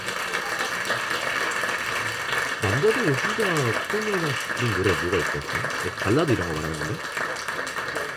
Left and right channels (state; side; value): identical; both; correlation 1.00